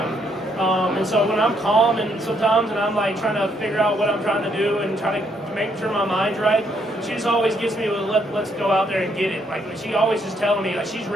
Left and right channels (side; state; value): both; normal; correlation 0.72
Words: And so when I'm calm and sometimes and I'm like trying to figure out what I'm trying to do and trying to make sure my mind's right, she just always gets me with let's go out there and get it. Like she always is telling me like she's